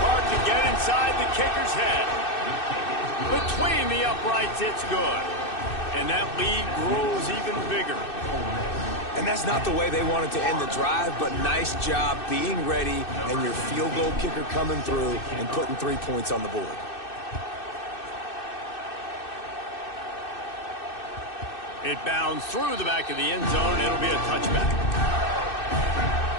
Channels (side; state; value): right; late; 2.6 ms